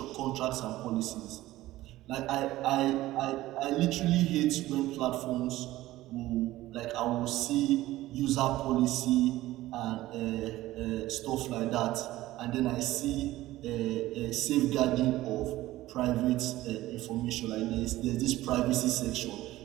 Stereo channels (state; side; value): quieter; left; 16.4 dB